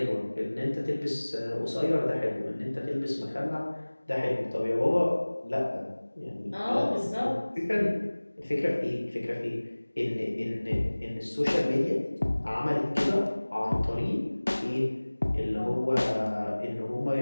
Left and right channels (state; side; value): inverted; both; correlation -1.00